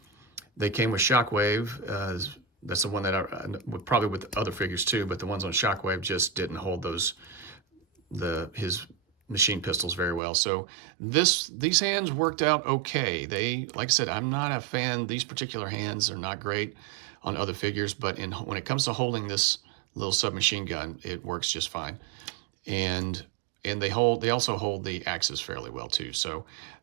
They came with Shockwave. That's the one that probably with other figures too, but the ones on Shockwave just didn't hold his machine pistols very well. So these hands worked out okay. Like I said, I'm not a fan. These particular hands are not great on other figures, but when it comes to holding this little submachine gun, it works just fine. And they also hold the axes fairly well too. So,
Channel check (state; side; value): drops out; left; at 10.2 s